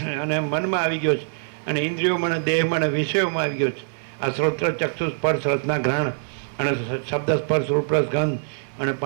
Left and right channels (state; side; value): silent; left; digital silence